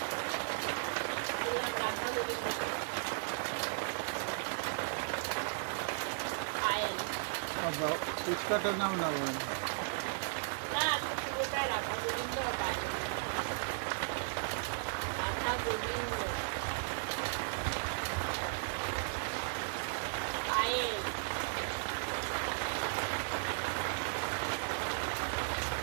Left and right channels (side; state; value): left; silent; 54 dB below the other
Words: বললাম রাধা গোবিন্দ, পায়েল। ফুচকাটার নাম না বলেন না, পুরোটাই রাধা গোবিন্দ আর পায়েল। রাধা গোবিন্দ পায়েল।